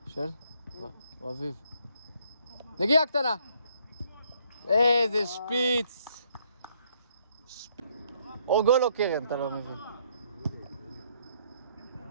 של? הוא אביב. נגיעה קטנה. איזה שפיץ. או גול או קרן, אתה לא מבין.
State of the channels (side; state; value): both; inverted; correlation -0.68